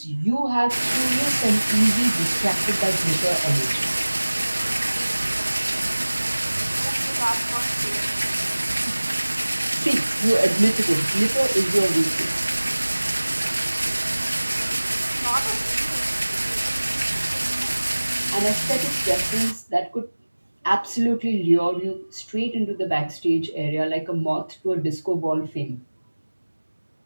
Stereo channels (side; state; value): both; inverted; correlation -1.00